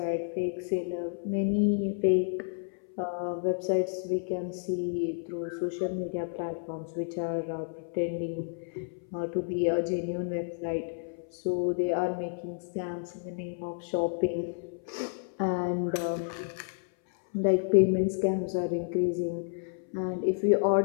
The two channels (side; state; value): right; silent; 57 dB below the other